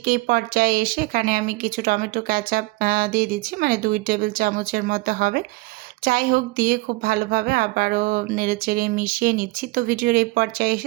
এই পর্যায়ে এসে এখানে আমি কিছু টমেটো কেচাপ দিয়ে দিচ্ছি, মানে 2 টেবিল চামচের মতো হবে। যাই হোক, দিয়ে খুব ভালোভাবে আবারও নেড়েচেড়ে মিশিয়ে নিচ্ছি। তো ভিডিওর এই পর্যায়ে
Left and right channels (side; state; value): left; quieter; 22.4 dB